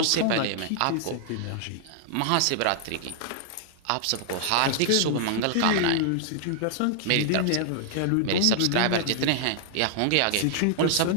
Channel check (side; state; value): both; different; correlation -0.01